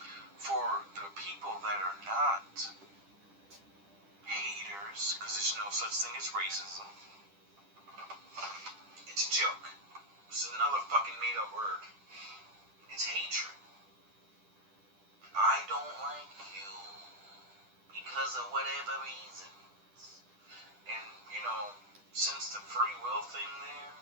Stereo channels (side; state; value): left; late; 10 ms